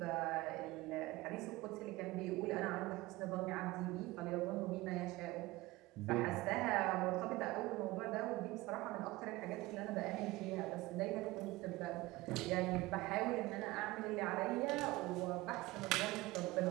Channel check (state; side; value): quieter; left; 19.9 dB